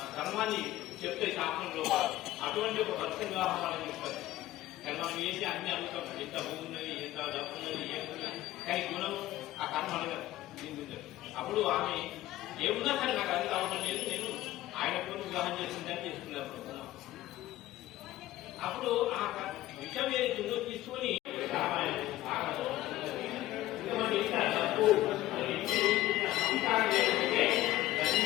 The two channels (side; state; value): right; quieter; 15.5 dB